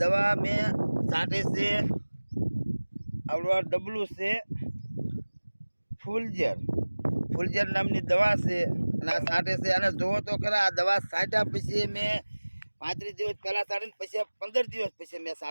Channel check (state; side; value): inverted; both; correlation -1.00